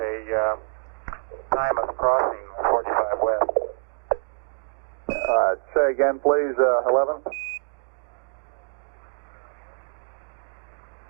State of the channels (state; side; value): silent; left; digital silence